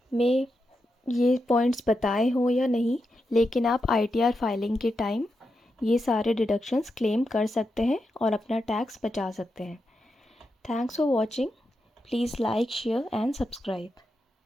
में ये पॉइंट्स बताए हों या नहीं, लेकिन आप ITR फाइलिंग के टाइम ये सारे डिडक्शंस क्लेम कर सकते हैं और अपना टैक्स बचा सकते हैं। Thanks for watching. Please like, share and subscribe.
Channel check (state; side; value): normal; both; correlation 0.87